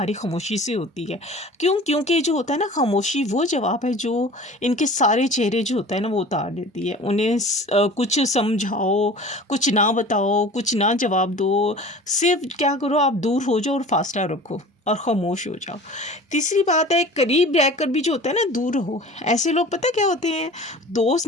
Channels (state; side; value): normal; both; correlation 0.41